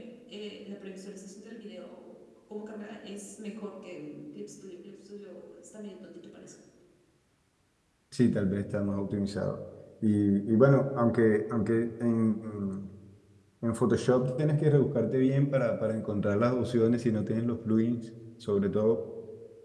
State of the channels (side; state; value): both; identical; correlation 1.00